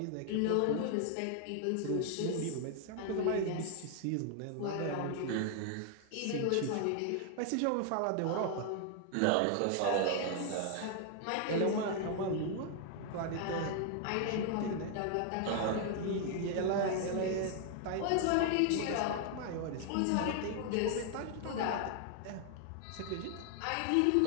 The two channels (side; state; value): both; different; correlation 0.00